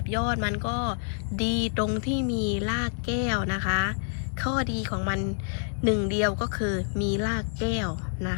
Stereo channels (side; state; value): right; silent; 60 dB below the other